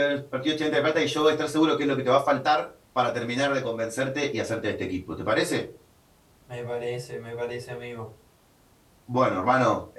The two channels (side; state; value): both; identical; correlation 1.00